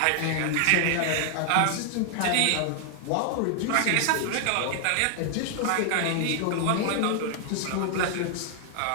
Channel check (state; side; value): different; both; correlation 0.00